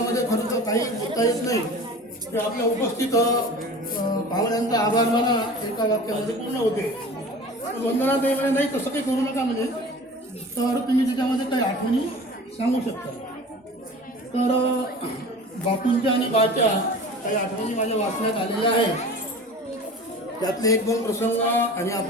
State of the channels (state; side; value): normal; both; correlation 0.39